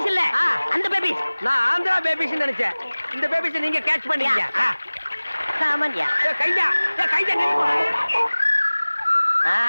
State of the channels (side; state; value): both; inverted; correlation -1.00